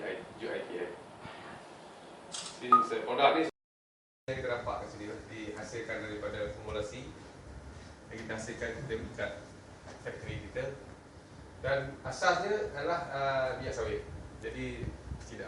UiTM. Produk ni yang kita dapat kat sini dihasilkan daripada formulasi yang kita hasilkan kita ikat factory kita, dan asasnya adalah minyak sawit. Jadi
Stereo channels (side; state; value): both; identical; correlation 1.00